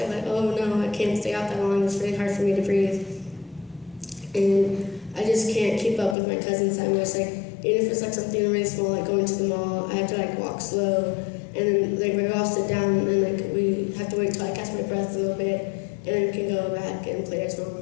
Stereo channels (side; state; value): right; drops out; at 6.2 s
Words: I'm like, oh no, I can't stay out that long. It's really hard for me to breathe, and I just can't keep up with my cousins that much. Like, even if it's like something really small, like going to the mall, I have to like walk slow, and then like we all sit down, and like we have to wait till I catch my breath a little bit, and then we can go back and play as